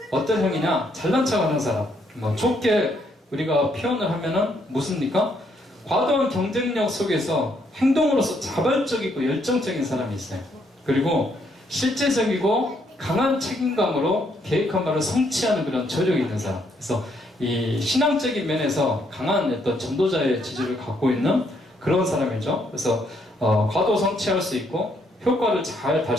어떤 형이냐? 잘난 척하는 사람. 뭐 좋게 우리가 표현을 하면은 무슨입니까? 과도한 경쟁력 속에서 행동으로서 자발적이고 열정적인 사람이 있어요. 그리고 실제적이고 강한 책임감으로 계획한 바를 성취하는 그런 저력이 있는 사람. 그래서 이 신앙적인 면에서 강한 어떤 전도자의 지지를 갖고 있는 그런 사람이죠. 그래서 과도 성취할 수 있고 효과를 잘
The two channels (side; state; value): both; normal; correlation 0.72